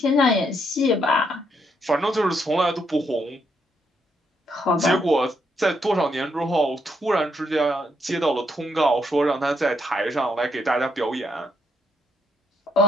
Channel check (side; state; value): both; normal; correlation 0.74